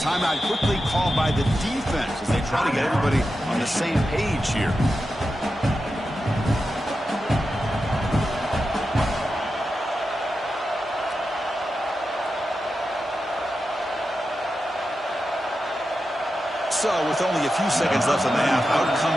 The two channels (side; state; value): both; normal; correlation 0.90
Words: quickly called by the defense as they try to get everybody on the same page here. So, with only a few seconds left in the half, out